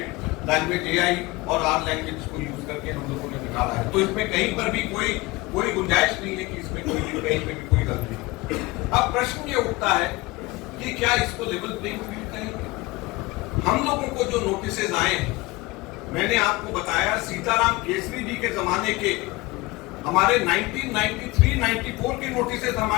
लैंग्वेज AI और आर लैंग्वेज को यूज करके हम लोगों ने निकाला है। तो इसमें कहीं पर भी कोई गुंजाइश नहीं है कि इसमें कहीं पे भी कोई गलती है। अब प्रश्न ये उठता है कि क्या इसको लेवल प्लेइंग फील्ड कहेंगे? हम लोगों को जो नोटिसेज आए हैं, मैंने आपको बताया सीताराम केसरी जी के जमाने के, हमारे 1993-94 के नोटिसेज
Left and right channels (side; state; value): right; quieter; 21.8 dB